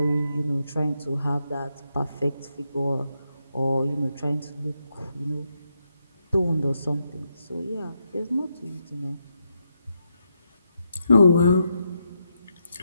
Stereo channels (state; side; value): inverted; both; correlation -0.82